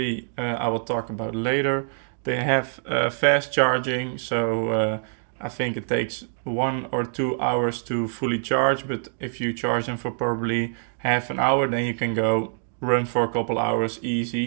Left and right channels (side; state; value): left; silent; digital silence